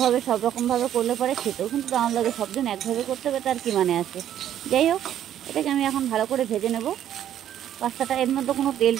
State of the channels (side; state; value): left; quieter; 10.9 dB